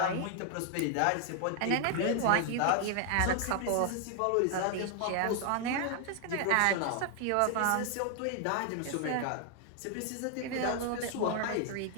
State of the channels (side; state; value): both; different; correlation 0.00